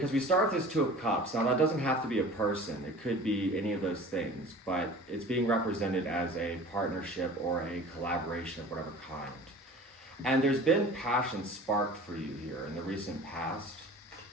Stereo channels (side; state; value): both; normal; correlation 0.42